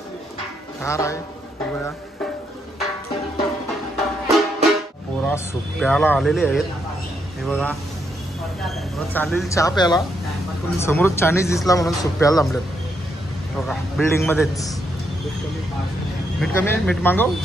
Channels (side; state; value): both; normal; correlation 0.78